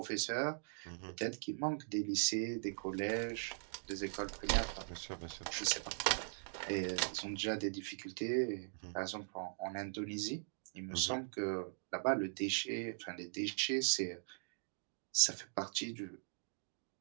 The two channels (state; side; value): silent; left; digital silence